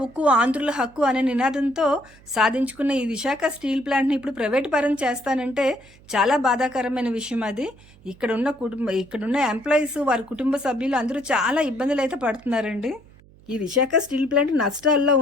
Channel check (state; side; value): noise; right; hum, 26 dB below the sound